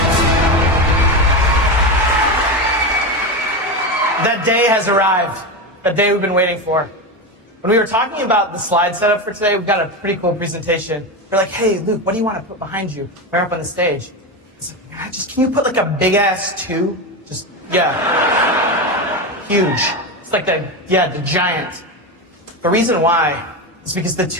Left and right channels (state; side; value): normal; both; correlation 0.17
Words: That day has arrived. That day we've been waiting for. When we were talking about the slide setup for today, we've got a pretty cool presentation. We're like, hey, Luke, what do you want to put behind you? We're up on the stage. It's like, can you put like a big ass 2? Just, yeah. Huge. It's like the giant. The reason why is because the